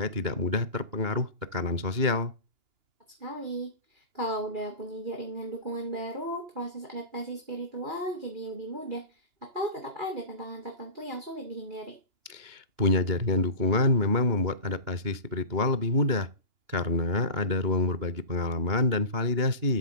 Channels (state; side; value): late; left; 2.9 ms